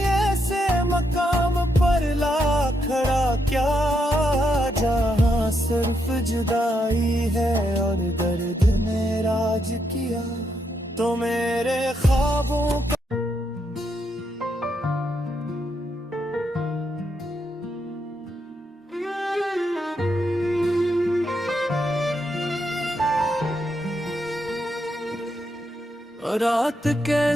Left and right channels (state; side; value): normal; both; correlation 0.79